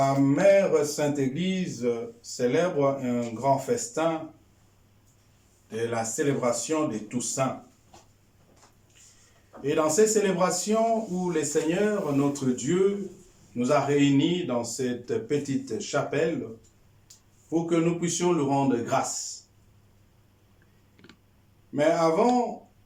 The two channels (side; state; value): both; identical; correlation 1.00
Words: Mère Sainte Église célèbre un grand festin de la célébration de Toussaint. Et dans ces célébrations où le Seigneur, notre Dieu, nous a réunis dans cette petite chapelle pour que nous puissions lui rendre grâce. Mais avant,